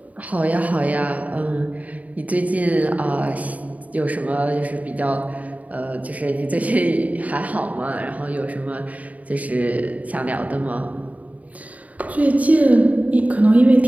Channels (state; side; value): late; left; 0.071 ms